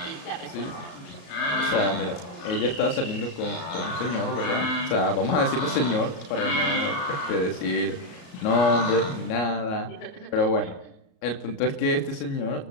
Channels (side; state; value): right; late; 33 ms